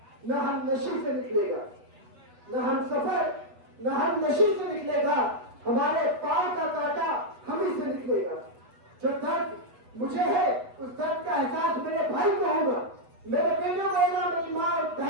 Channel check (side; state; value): left; late; 8.1 ms